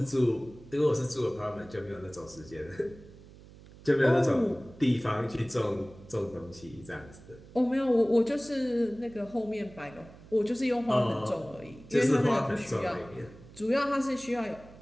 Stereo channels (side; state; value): right; noise; hum, 20 dB below the sound